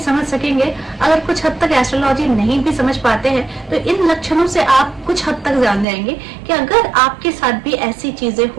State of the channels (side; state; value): left; drops out; at 5.9 s